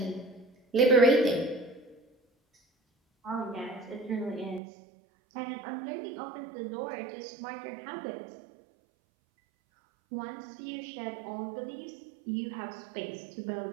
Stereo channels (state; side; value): drops out; left; at 4.6 s